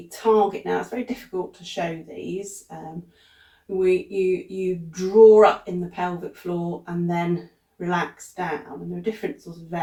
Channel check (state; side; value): identical; both; correlation 1.00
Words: target. Now, it's very difficult to show these. You draw up in the pelvic floor and then relax down, and there are different sorts of